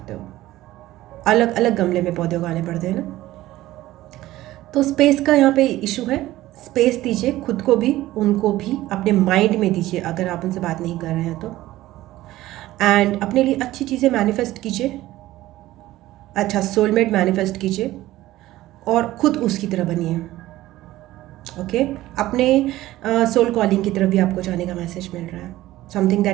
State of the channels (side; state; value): left; quieter; 16.0 dB